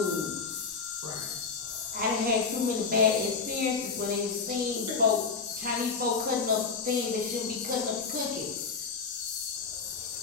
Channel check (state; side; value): quieter; right; 5.0 dB